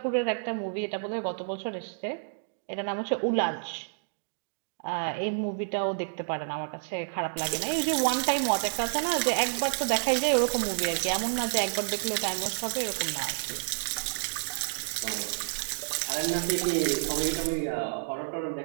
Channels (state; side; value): silent; left; digital silence